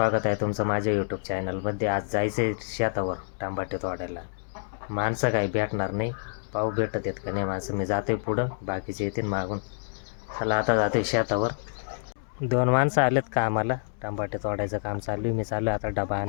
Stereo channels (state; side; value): silent; right; digital silence